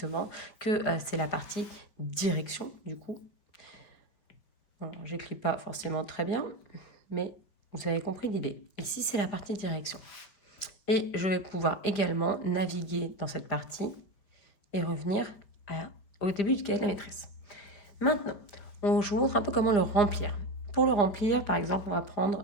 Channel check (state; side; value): late; right; 5.3 ms